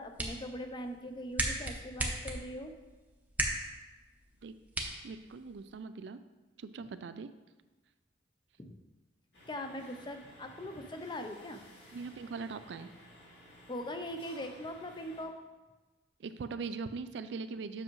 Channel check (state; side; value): normal; both; correlation 0.29